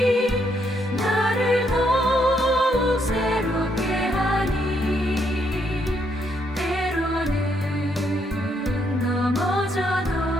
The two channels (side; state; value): both; normal; correlation 0.74